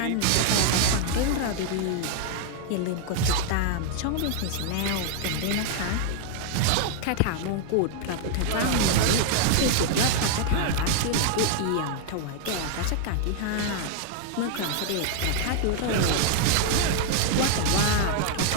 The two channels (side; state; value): both; different; correlation 0.00